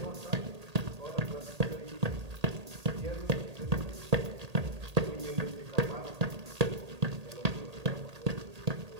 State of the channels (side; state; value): left; late; 1.8 ms